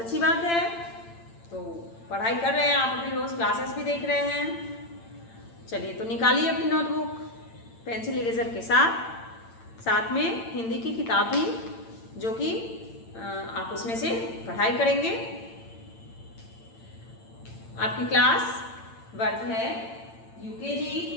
बात है। तो पढ़ाई कर रहे हैं आप, अपनी रोज़ क्लासेस भी देख रहे हैं। चलिए तो निकालिए अपनी नोटबुक पेंसिल इरेजर के साथ में हिंदी की किताब भी, जो कि आप उसमें से पढ़ाई करेंगे। आपकी क्लास वर्ग है यूकेजी,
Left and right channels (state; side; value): late; right; 8.8 ms